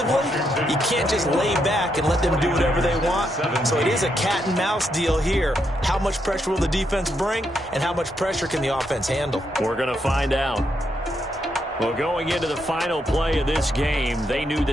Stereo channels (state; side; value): normal; both; correlation 0.79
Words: you can't just lay back and let them do whatever they want. So it is a cat and mouse deal here. How much pressure will the defense bring and how much pressure can the offense handle? We're going to find out. Well, going into the final play of this game, they knew